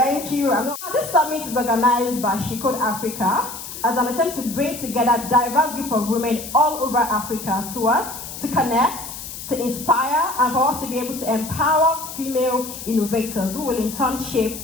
you. Now, this summit is organized by She Code Africa as an attempt to bring together a diverse group of women all over Africa to what? To connect, to inspire, and for us to be able to empower female innovators who will in turn shape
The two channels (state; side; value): noise; left; hiss, 10 dB below the sound